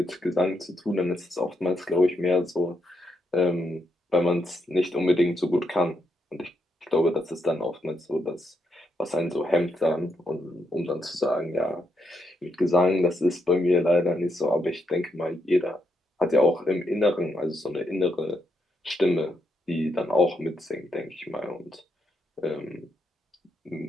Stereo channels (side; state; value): both; normal; correlation 0.80